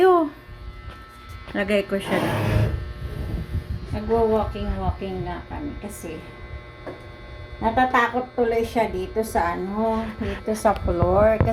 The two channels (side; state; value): both; identical; correlation 1.00